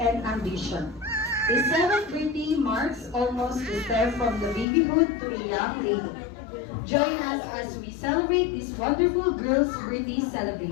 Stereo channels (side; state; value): right; drops out; at 4.7 s